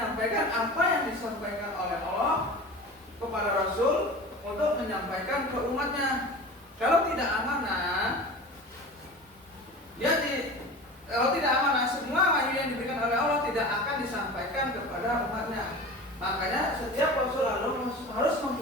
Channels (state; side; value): normal; both; correlation 0.35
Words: apa yang disampaikan oleh Allah kepada Rasul untuk menyampaikan ke umatnya. Kalau tidak amanah, kalau tidak amanah, semua wahyu yang diberikan oleh Allah tidak akan disampaikan kepada umatnya. Makanya setiap Rasul harus